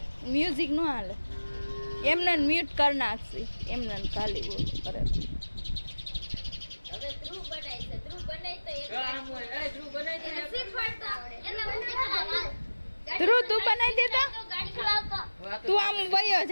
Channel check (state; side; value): inverted; both; correlation -1.00